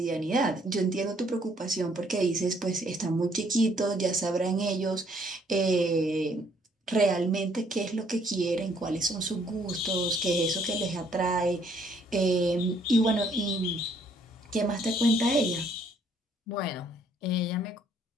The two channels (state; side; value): normal; both; correlation 0.66